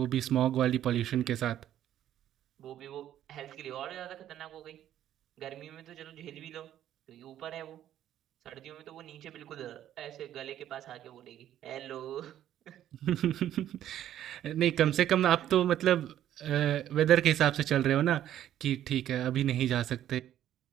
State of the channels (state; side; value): quieter; left; 11.6 dB